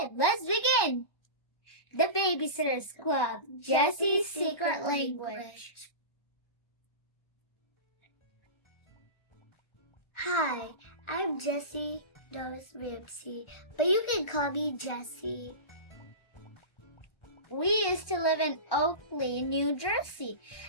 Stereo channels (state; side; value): late; right; 1.2 ms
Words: let's begin. The Babysitter's Club, Jessi's Secret Language. Hi, I'm Jessi Doris Ramsey, but you can call me Jessi. We used to live in Oakley, New Jersey.